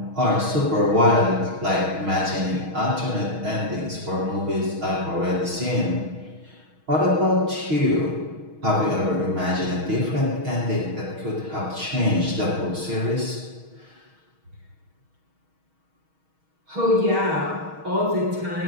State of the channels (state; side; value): late; left; 6.3 ms